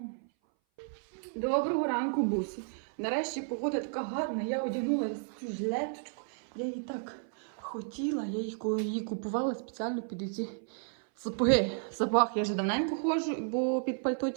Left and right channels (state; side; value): silent; left; 56 dB below the other